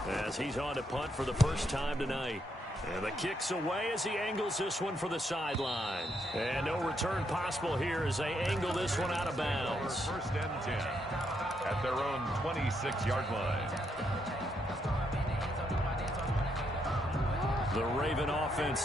as he's on to punt for the first time tonight. And the kick's away as he angles this one for the sideline. And no return possible here as they angle this one out of bounds. 1st and 10 at their own 26-yard line. The Raven offense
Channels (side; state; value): both; normal; correlation 0.77